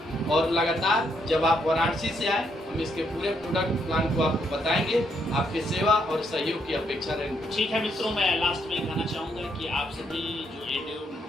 और लगातार जब आप वाराणसी से आए हम इसके पूरे प्रोडक्ट प्लान को आपको बताएंगे, आपकी सेवा और सहयोग की अपेक्षा रहेगी। ठीक है मित्रों, मैं लास्ट में कहना चाहूँगा कि आप सभी जो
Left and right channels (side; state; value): both; normal; correlation 0.75